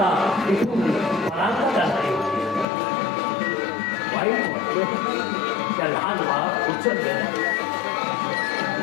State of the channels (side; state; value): right; drops out; at 2.7 s